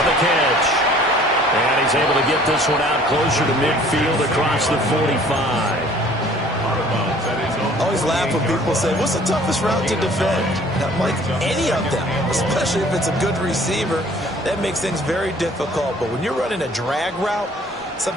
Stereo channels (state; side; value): normal; both; correlation 0.53